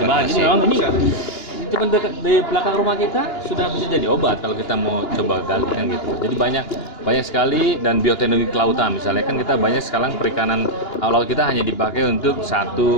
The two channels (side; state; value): right; late; 2.9 ms